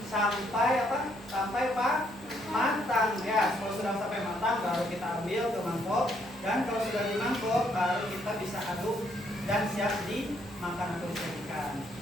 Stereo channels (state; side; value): normal; both; correlation 0.71